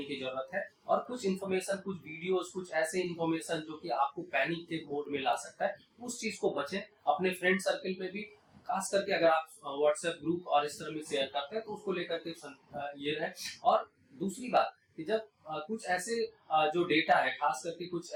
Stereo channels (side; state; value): both; identical; correlation 1.00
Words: की जरूरत है। और कुछ इन्फॉर्मेशन, कुछ वीडियोस, कुछ ऐसे इन्फॉर्मेशन जो कि आपको पैनिक के मोड में ला सकता है, उस चीज को बचें। अपने फ्रेंड सर्कल में भी, खास करके अगर आप व्हाट्सएप ग्रुप और इस तरह में शेयर करते हैं, तो उसको लेकर के ये रहे। और दूसरी बात कि जब कुछ ऐसे जो डेटा है, खास करके कुछ